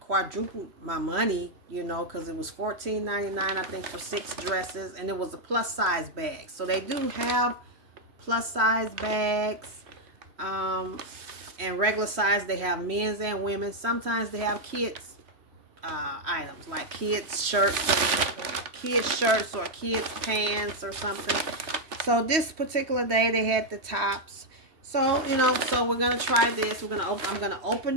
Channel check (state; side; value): late; left; 3.1 ms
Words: quadrupled my money, because it was $14.99 I think for 6 dresses, and it was a plus size bag. So they do have plus size bags, and regular size. They have men's and women's. Sometimes they have kids items like kids shirts or kids pants or something. So this particular day they had the tops. So so we're gonna try this. I'm gonna open